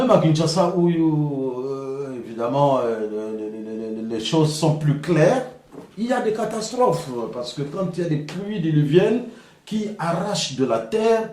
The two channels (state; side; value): identical; both; correlation 1.00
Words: à Kinshasa, où évidemment les choses sont plus claires, il y a des catastrophes. Parce que quand il y a des pluies diluviennes qui arrachent de la terre,